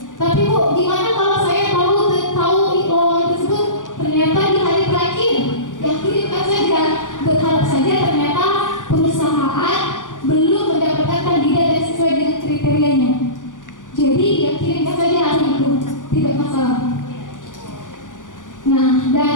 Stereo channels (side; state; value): right; late; 0.88 ms